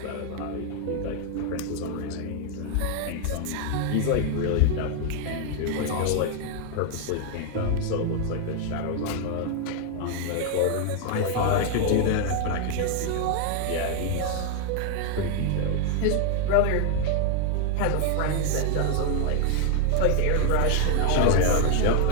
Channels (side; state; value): both; different; correlation 0.00